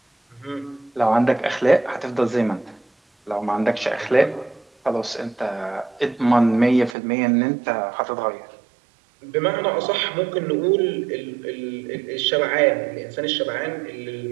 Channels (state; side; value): drops out; left; at 7.0 s